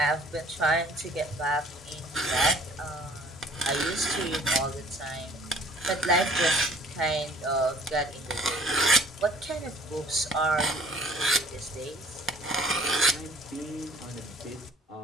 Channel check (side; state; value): both; normal; correlation 0.53